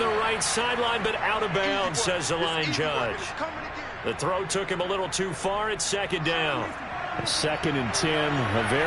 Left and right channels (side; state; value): both; identical; correlation 1.00